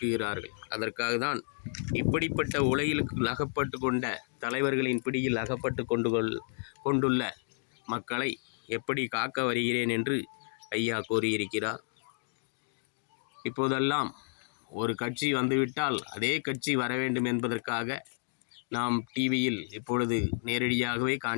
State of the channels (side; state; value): right; silent; 57 dB below the other